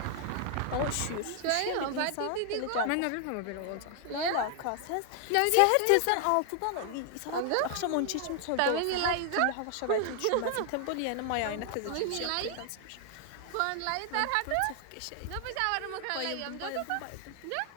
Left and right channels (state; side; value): different; both; correlation 0.00